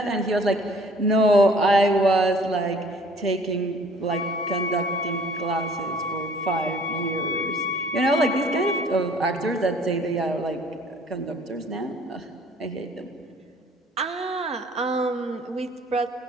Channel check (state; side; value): normal; both; correlation 0.54